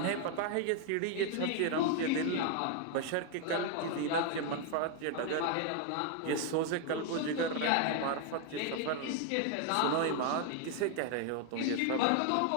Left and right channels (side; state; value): both; different; correlation 0.01